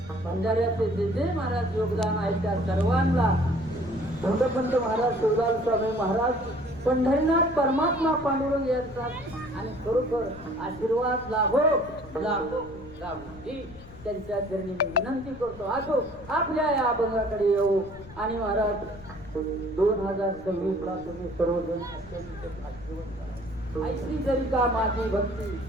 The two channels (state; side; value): noise; left; rumble, 18 dB below the sound